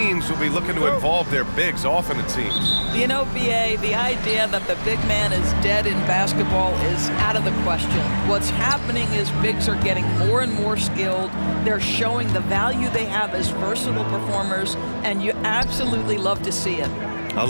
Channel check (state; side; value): inverted; both; correlation -1.00